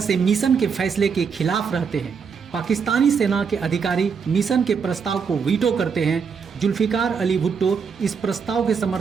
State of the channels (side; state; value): left; quieter; 6.1 dB